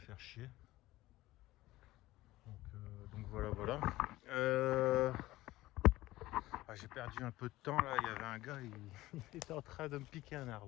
chier. Donc voilà. J'ai perdu un peu de temps là, il y avait un gars, il était en train de me piquer un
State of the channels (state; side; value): quieter; right; 17.3 dB